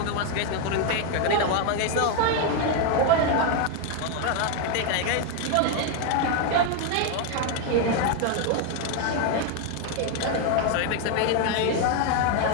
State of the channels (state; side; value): different; both; correlation 0.01